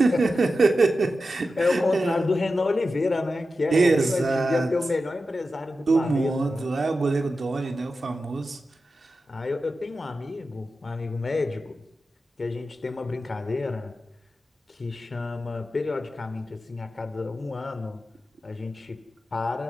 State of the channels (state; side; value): normal; both; correlation 0.91